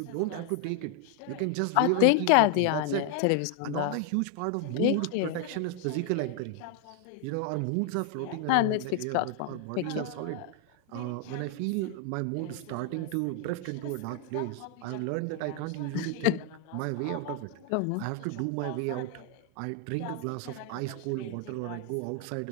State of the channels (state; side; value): different; both; correlation 0.00